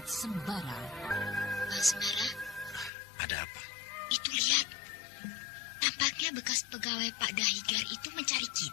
Sembara. Pak Sembara, Ada apa? itu lihat. Tampaknya bekas pegawai Pak Dahigar itu mencari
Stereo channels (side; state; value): right; drops out; at 2.9 s